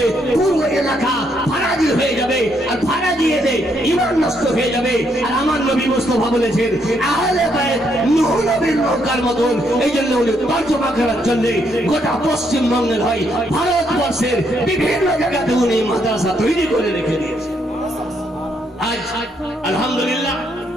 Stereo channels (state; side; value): normal; both; correlation 0.74